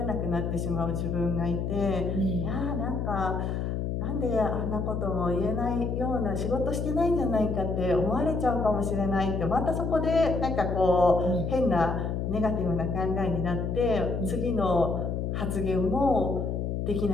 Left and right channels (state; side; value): noise; left; hum, 1 dB below the sound